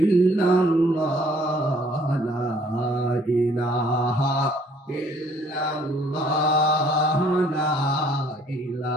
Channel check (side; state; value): both; normal; correlation 0.60